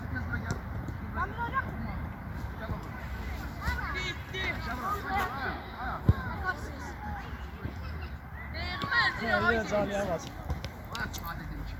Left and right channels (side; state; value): both; identical; correlation 1.00